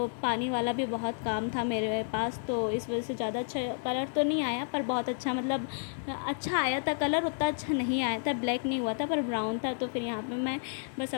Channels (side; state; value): right; silent; digital silence